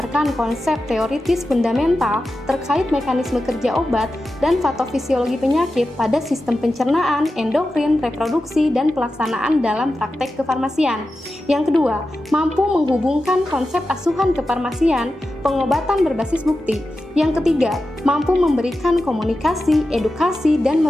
konsep teoritis fundamental terkait mekanisme kerja obat dan patofisiologi penyakit pada sistem pencernaan, endokrin, reproduksi, dan pelaksanaan dalam praktek kefarmasian. Yang kedua, mampu menghubungkan konsep asuhan kefarmasian, pengobatan berbasis bukti. Yang ketiga, mampu memberikan komunikasi, edukasi, dan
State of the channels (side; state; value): both; normal; correlation 0.92